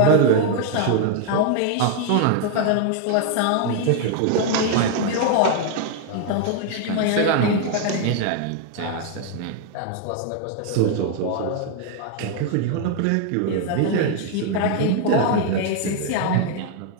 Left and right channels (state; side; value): different; both; correlation 0.00